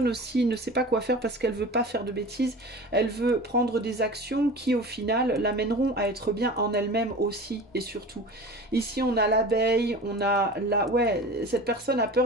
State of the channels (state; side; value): normal; both; correlation 0.36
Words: aussi ne sait pas quoi faire parce qu'elle veut pas faire de bêtises. Elle veut prendre des actions qui au final l'amèneront à être bien en elle-même aussi et surtout. Ici on a l'abeille, on a la... Ouais, cette personne a